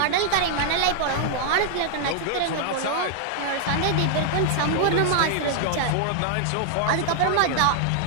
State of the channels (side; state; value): both; different; correlation -0.01